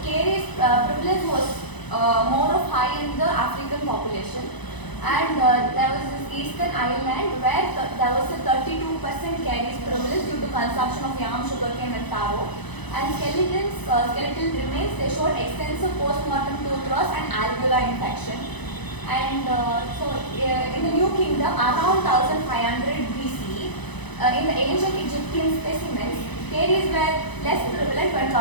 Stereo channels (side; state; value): right; late; 1.0 ms